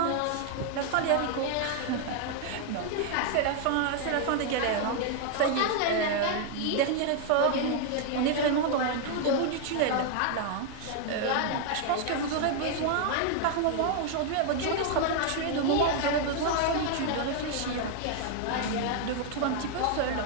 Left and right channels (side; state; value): both; different; correlation 0.00